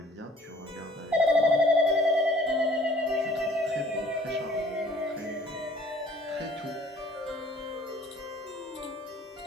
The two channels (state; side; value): normal; both; correlation 0.54